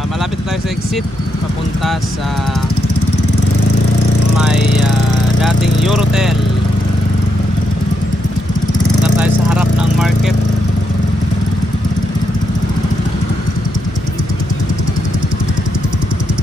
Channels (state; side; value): normal; both; correlation 0.81